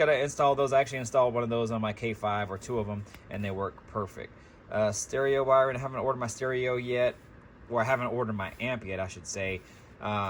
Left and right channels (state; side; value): identical; both; correlation 1.00